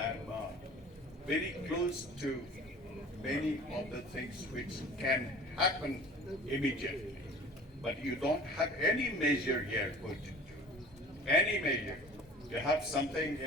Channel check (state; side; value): normal; both; correlation 0.43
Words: very close to many of the things which can happen immediately. But you don't have any measure here put into. Any measure. You have something